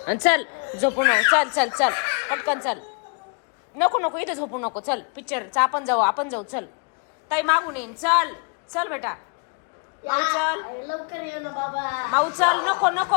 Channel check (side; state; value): right; quieter; 37.8 dB